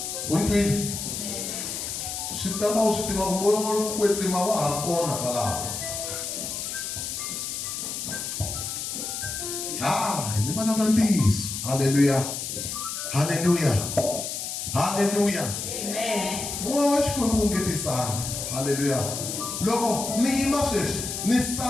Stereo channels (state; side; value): noise; left; hiss, 5 dB below the sound